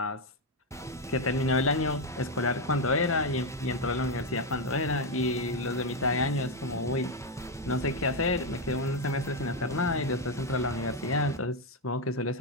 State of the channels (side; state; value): both; normal; correlation 0.05